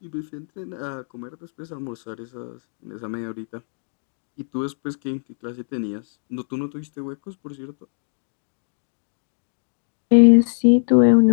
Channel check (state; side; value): silent; right; digital silence